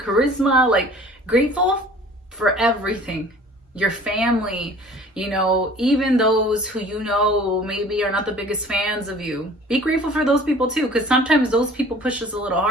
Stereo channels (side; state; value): both; normal; correlation 0.48